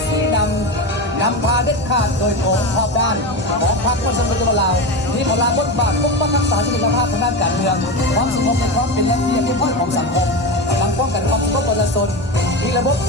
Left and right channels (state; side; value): normal; both; correlation 0.20